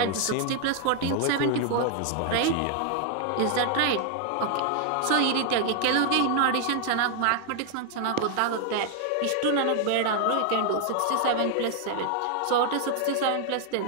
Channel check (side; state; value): both; different; correlation 0.00